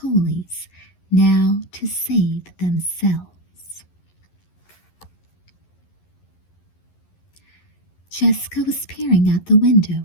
now to save themselves. Jessica was peering out the window,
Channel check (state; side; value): late; right; 11 ms